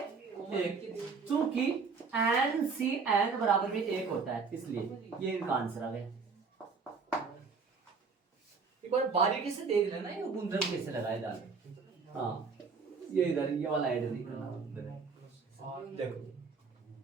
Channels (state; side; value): quieter; left; 5.0 dB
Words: एक। चूंकि NCN बराबर भी एक होता है, इसलिए ये इनका आंसर आ गया। एक बार बारीकी से देख लेना ये गुणधर्म कैसे लगाए डाल। हाँ, ये इधर ये वाला ऐड नहीं करना, देखो